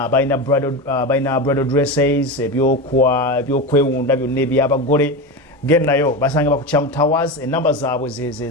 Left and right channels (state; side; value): normal; both; correlation 0.20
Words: balina bridal dresses ebyokwewunda byonna ebyabagole gennayo basanga bakuchamu towers enamba zaabwe